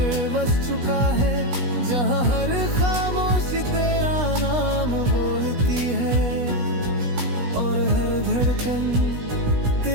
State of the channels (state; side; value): late; left; 16 ms